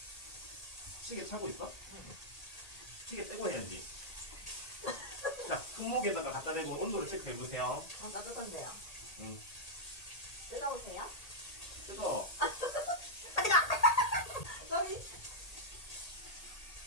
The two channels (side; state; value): right; late; 1.8 ms